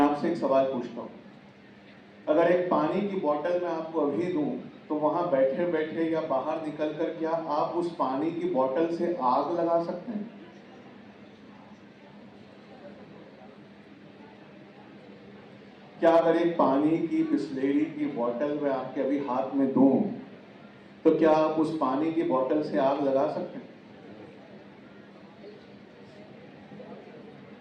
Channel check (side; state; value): both; identical; correlation 1.00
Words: आपसे एक सवाल पूछता हूँ। अगर एक पानी की बोतल मैं आपको अभी दूं तो वहां बैठे बैठे या बाहर निकलकर क्या आप उस पानी की बोतल से आग लगा सकते हैं? क्या अगर एक पानी की बिस्लेरी की बोतल मैं आपके अभी हाथ में दूं तो क्या आप उस पानी की बोतल से आग लगा सकते हैं?